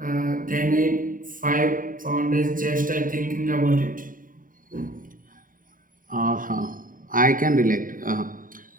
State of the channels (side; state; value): left; late; 0.40 ms